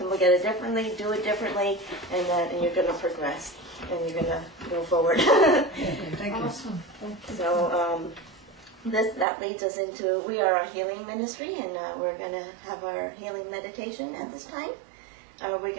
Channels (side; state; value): left; drops out; at 9.2 s